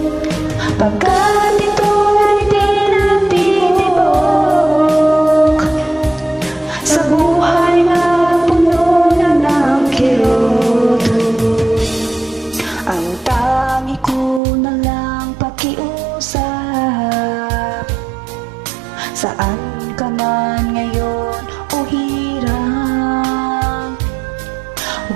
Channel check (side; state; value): left; drops out; at 14.4 s